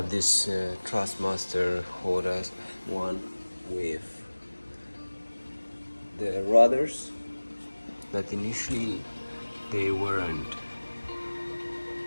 this Thrustmaster Hotas One with the rudders that initially they weren't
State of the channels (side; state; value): both; inverted; correlation -1.00